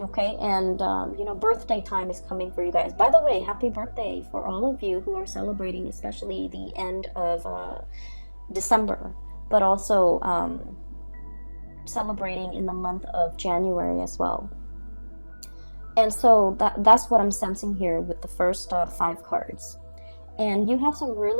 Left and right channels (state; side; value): inverted; both; correlation -1.00